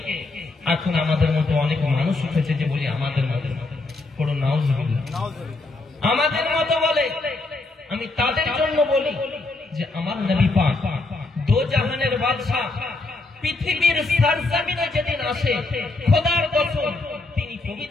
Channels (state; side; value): quieter; right; 3.3 dB